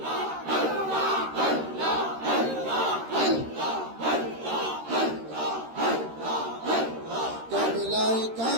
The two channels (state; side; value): late; left; 13 ms